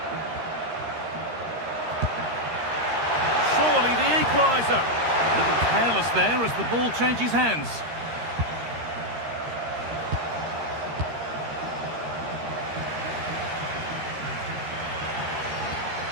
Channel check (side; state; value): left; late; 13 ms